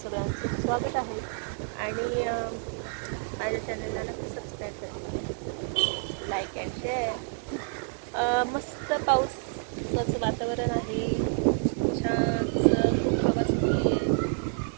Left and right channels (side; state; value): left; silent; 59 dB below the other